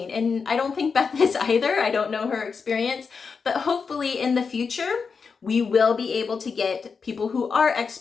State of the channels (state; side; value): quieter; right; 5.4 dB